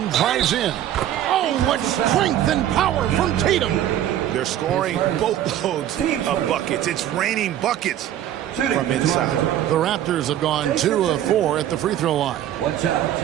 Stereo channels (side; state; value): left; quieter; 11.7 dB